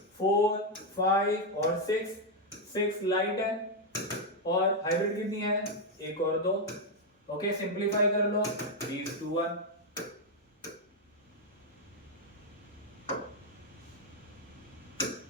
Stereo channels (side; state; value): both; normal; correlation 0.02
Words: 4 5 और 6 लाइट है, और हाइब्रिड कितनी है एक और दो। ओके सिंपलीफाई कर लो 3:1,